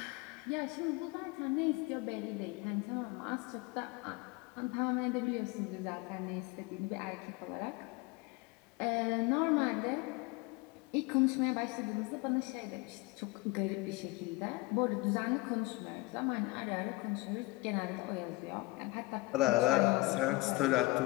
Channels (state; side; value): quieter; right; 22.3 dB